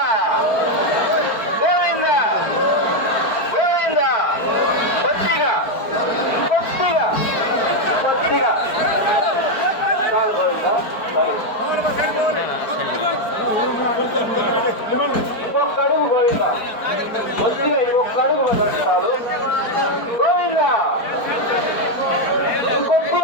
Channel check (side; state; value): right; late; 4.5 ms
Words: గోవింద గోవింద కొద్దిగా కొద్దిగా కొద్దిగా ఇంకొక అడుగు గోవింద కొద్దిగా ఇంకొక అడుగు చాలు గోవింద